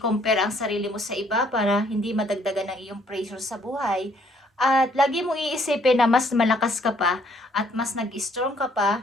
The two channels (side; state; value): both; normal; correlation 0.65